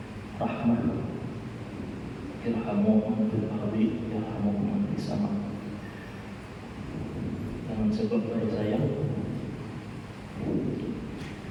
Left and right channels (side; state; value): both; identical; correlation 1.00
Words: rahmat irhamu man fil ardi yarhamu man fis sama. Dengan sebab dari sayang